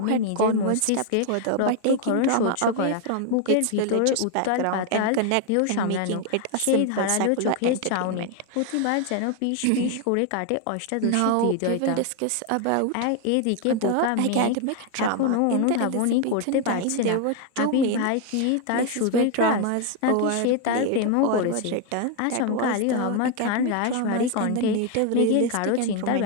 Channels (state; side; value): different; both; correlation 0.01